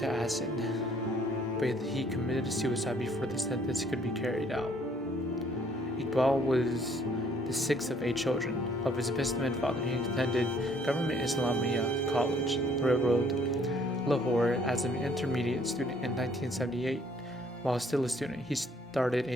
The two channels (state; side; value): normal; both; correlation 0.62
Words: acid. But he committed suicide before the sentence could be carried out. Iqbal was the sixth of 8 children. Of his businessman father, he attended Government Islamia College, Railroad, Lahore as an intermediate student in 1978. While still a student, he started